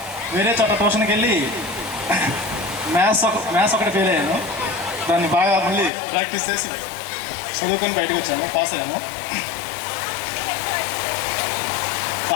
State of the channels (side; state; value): right; drops out; at 5.9 s